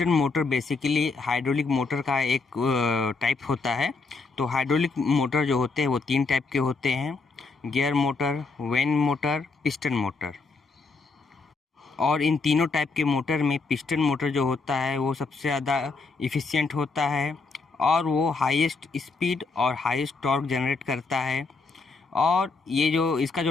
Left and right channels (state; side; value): quieter; right; 4.2 dB